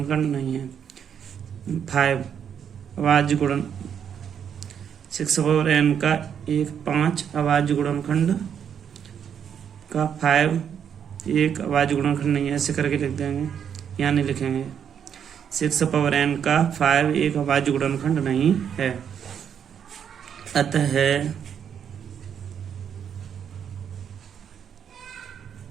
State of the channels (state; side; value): quieter; left; 8.2 dB